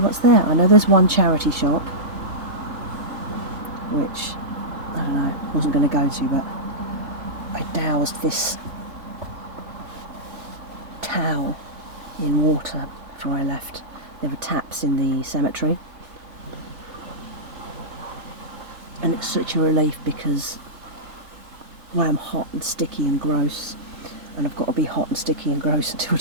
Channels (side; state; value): left; late; 3.3 ms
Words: there. I know there's one charity shop, which, I don't know, wasn't going to go to, but I doused this towel in water before I left. There were taps in the cemetery. And it's such a relief because well, I'm hot and sticky and gross, and I've got to be hot and sticky and gross until